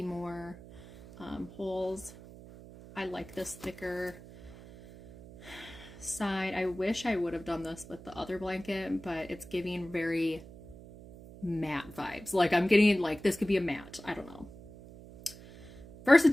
more holes. I like this thicker side. I wish I would have done this with the other blanket, but it's giving very matte vibes. Like I'm getting like this could be a matte. I don't know.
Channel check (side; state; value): right; noise; hum, 17 dB below the sound